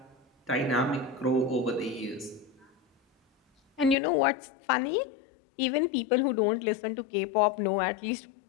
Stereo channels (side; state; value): right; drops out; at 4.0 s